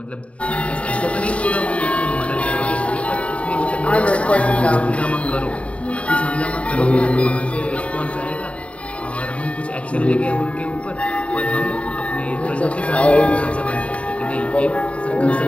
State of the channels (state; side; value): late; right; 0.063 ms